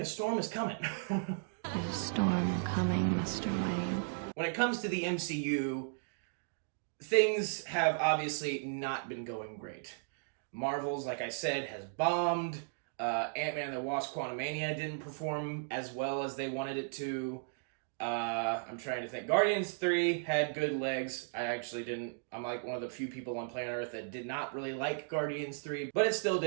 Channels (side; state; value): left; silent; digital silence